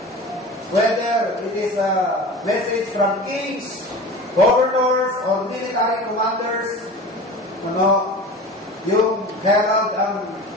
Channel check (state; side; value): normal; both; correlation 0.35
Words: Whether it is a message from kings, governors, or military commanders, yung herald